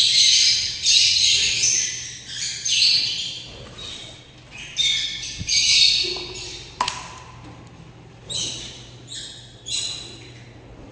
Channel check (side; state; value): both; identical; correlation 1.00